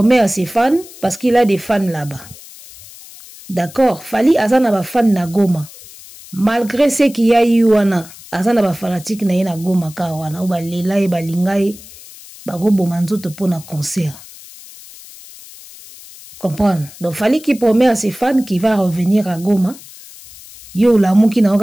à ses fans parce qu'il a des fans là-bas. D'accord, Fally azana ba fan na Goma. Malgré ce qu'il y a eu wana, azana ba fanatique na ye na Goma ka wana, ou ba lela e ba lingai ba go bomanzoto pour na concert. Comprendre? Donc Fally qui promet à ses fans qu'il va revenir à Goma. Yo la muki na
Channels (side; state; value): left; noise; hiss, 19 dB below the sound